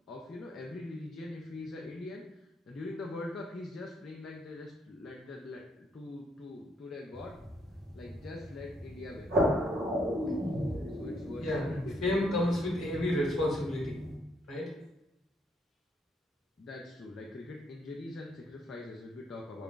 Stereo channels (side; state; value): both; normal; correlation 0.72